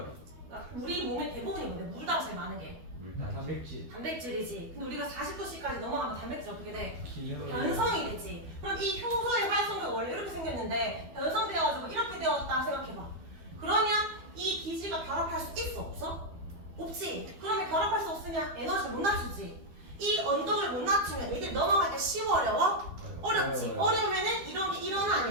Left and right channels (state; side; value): late; left; 12 ms